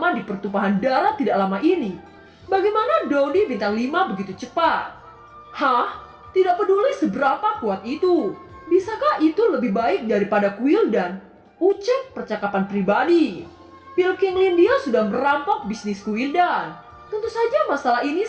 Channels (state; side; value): identical; both; correlation 1.00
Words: di pertumpahan darah tidak lama ini? Bagaimana Dodi bintang 5 begitu cepat? Hah? Tidak peduli seberapa kuat itu. Bisakah itu lebih baik daripada Guildan? Ucap percakapan pribadi. Pil Qingling dia sudah merampok bisnis Guildan. Tentu saja masalah ini